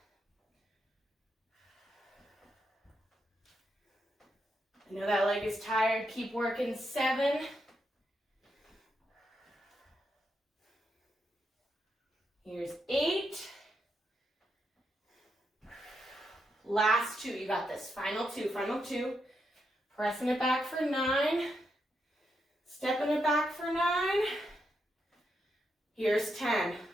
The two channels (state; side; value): normal; both; correlation 0.82